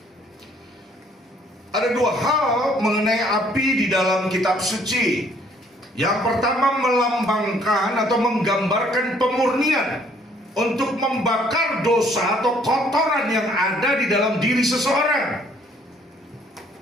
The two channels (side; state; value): both; normal; correlation 0.62